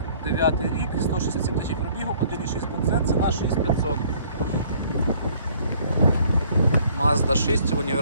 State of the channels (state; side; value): inverted; both; correlation -0.58